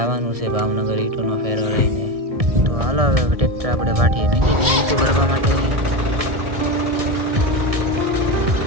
છે ભાવનગર ઈંટોનો ફેરો લઈને. તો હાલો હવે ટ્રેક્ટર આપણે વાટીએ મૂકી દઈએ ઈંટો ભરવા માટે.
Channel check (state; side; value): late; left; 1.6 ms